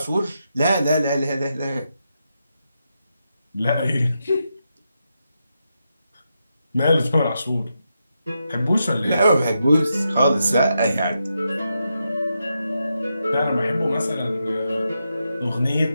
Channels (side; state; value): both; inverted; correlation -0.85